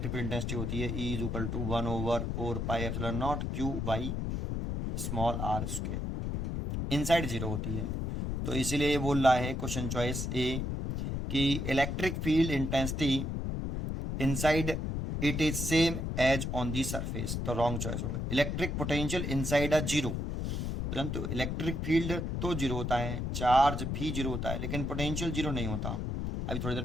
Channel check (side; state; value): left; noise; rumble, 2 dB below the sound